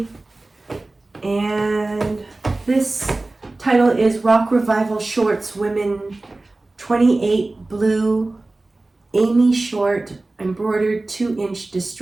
and this title is Rock Revival Shorts Women 28 Blue Amy Short Embroidered 2-inch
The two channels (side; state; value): left; quieter; 3.0 dB